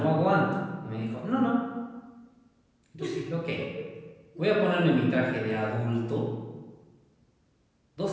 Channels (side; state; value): both; identical; correlation 1.00